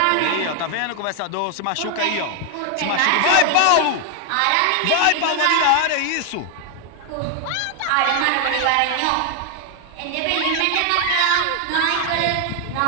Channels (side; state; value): both; different; correlation 0.00